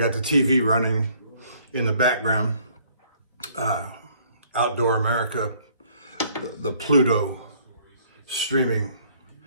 the TV running in the background. Outdoor America, the Pluto streaming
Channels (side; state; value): both; inverted; correlation -0.61